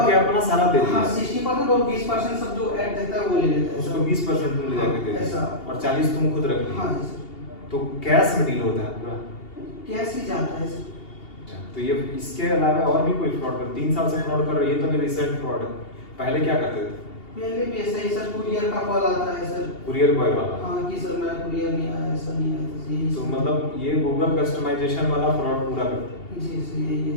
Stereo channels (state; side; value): late; right; 2.8 ms